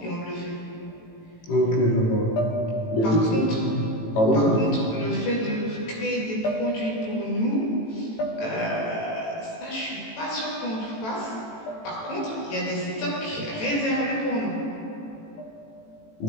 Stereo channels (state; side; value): late; right; 18 ms